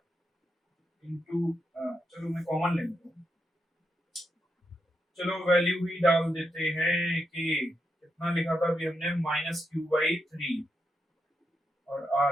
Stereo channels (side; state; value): both; normal; correlation 0.84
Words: इंटू, चलो मैं कॉमन ले लेता हूं, चलो वैल्यू ही डाल देते हैं कि कितना लिखा था अभी हमने, माइनस क्यू बाई 3 और r